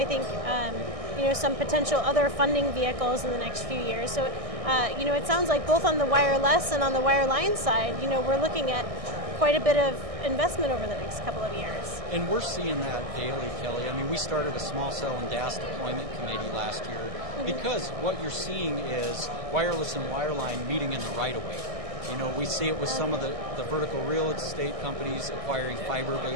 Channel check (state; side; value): late; left; 1.6 ms